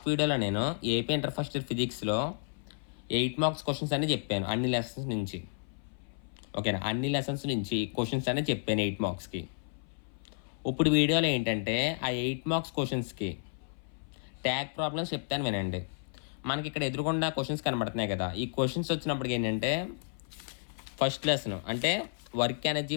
వీడియోలో నేను ఏపీ ఇంటర్ ఫస్ట్ ఇయర్ ఫిజిక్స్లో 8 మార్క్స్ క్వశ్చన్స్ అని చెప్పాను అన్ని లెసన్స్ నుంచి. ఓకేనా, అన్ని లెసన్స్ నుంచి క్వశ్చన్స్ అనేది చెప్పాను 8 మార్క్స్కి. ఇప్పుడు వీడియోలో ఏంటంటే ఆ 8 మార్క్స్ క్వశ్చన్స్కి ట్యాగ్ ప్రాబ్లమ్స్ చెప్తాను వినండి. మనకి ఇక్కడ ఎదురుకుండా క్వశ్చన్స్ కనబడుతున్నాయి కదా, ఈ క్వశ్చన్స్ వచ్చినప్పటికి ఏంటంటే ఫస్ట్ లెసన్ అంటే వర్క్ ఎనర్జీ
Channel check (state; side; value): silent; right; 57 dB below the other